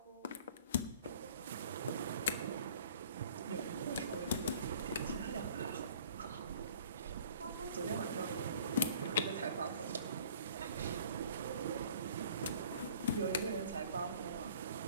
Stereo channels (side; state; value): both; inverted; correlation -0.52